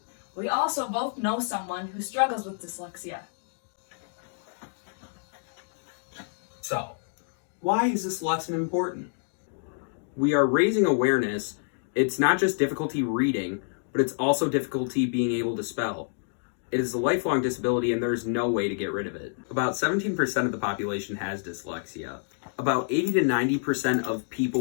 We also both know someone who struggles with dyslexia. So, why is this lesson important? We are raising awareness. It's not just difficulty reading, but it's also difficulty being able to spell. It is a lifelong disability and there's no way to get rid of it. About 17% of the population has dyslexia. About 80 to 90% of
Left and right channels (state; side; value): silent; right; digital silence